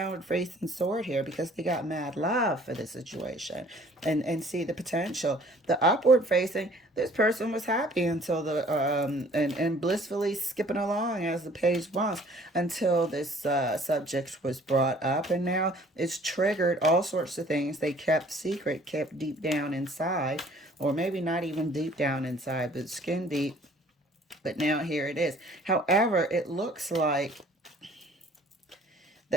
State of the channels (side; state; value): both; normal; correlation 0.55